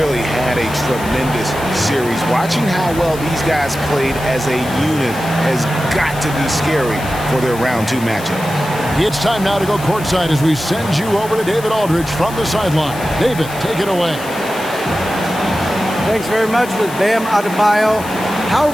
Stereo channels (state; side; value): noise; left; hiss, 15 dB below the sound